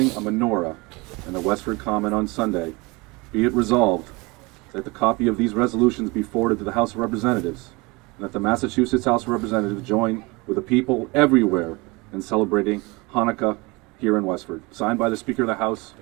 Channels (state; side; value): quieter; left; 25.4 dB